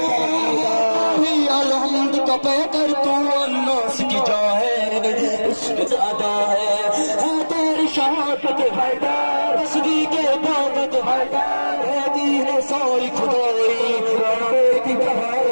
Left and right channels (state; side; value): inverted; both; correlation -1.00